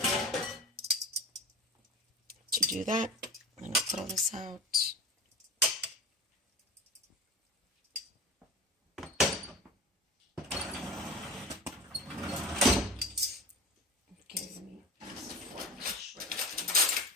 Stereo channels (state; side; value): normal; both; correlation 0.33